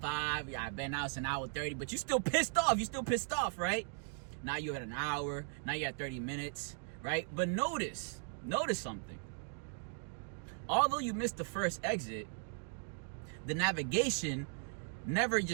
Yeah, I bet now it's an hour 30, but you're still pissed off, right? Now you're at an hour. Now you're at 30 minutes, right? But notice something. Although you missed the first exit, the navigation never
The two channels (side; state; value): left; silent; 53 dB below the other